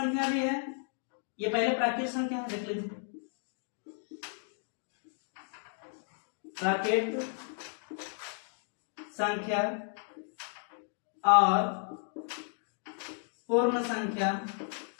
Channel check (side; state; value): right; silent; 55 dB below the other